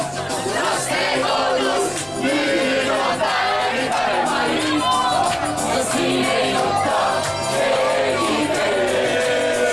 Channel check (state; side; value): noise; left; rumble, 24 dB below the sound